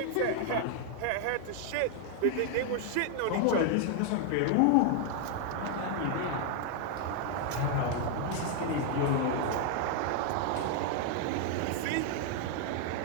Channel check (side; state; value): both; different; correlation 0.00